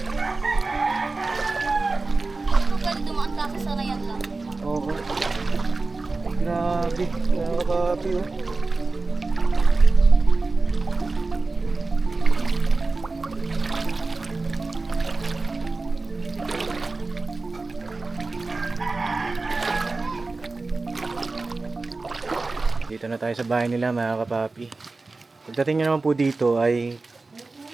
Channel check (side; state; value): left; quieter; 3.6 dB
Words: Pwede dumaan kasi sa rayan lang. Oo. Ay, grabe, mga kapapi, oh. Dito na tayo sa bahay nila, mga kapapi. Pagdating nyo naman po dito ay